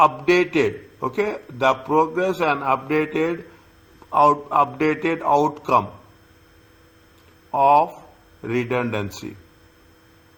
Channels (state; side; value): identical; both; correlation 1.00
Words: Okay, the progress and updated outcome of redundancy.